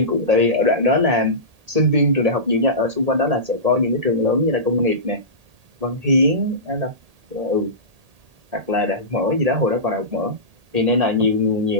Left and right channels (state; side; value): late; left; 1.8 ms